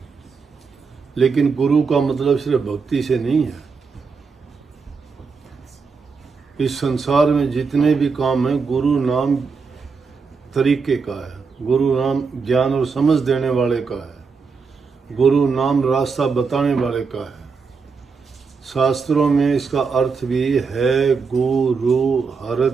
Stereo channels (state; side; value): quieter; left; 5.1 dB